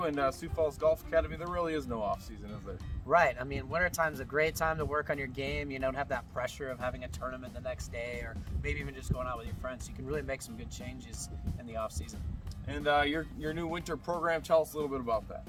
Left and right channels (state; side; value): identical; both; correlation 1.00